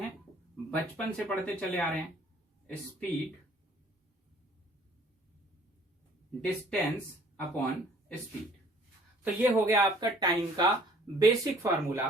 बचपन से पढ़ते चले आ रहे हैं। Speed distance upon speed. तो ये हो गया आपका टाइम का basic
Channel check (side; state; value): both; normal; correlation 0.56